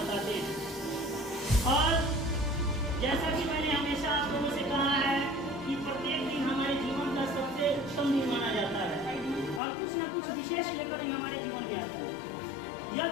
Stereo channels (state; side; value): drops out; right; at 9.6 s